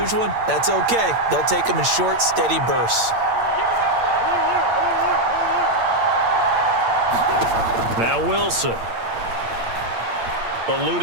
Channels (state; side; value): late; left; 8.8 ms